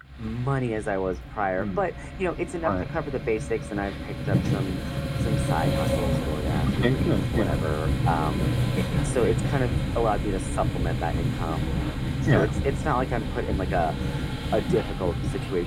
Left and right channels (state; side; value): identical; both; correlation 1.00